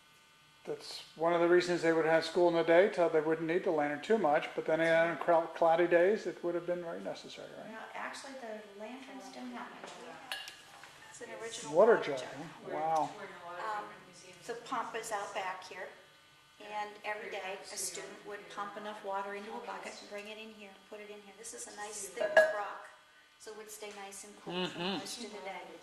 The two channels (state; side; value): identical; both; correlation 1.00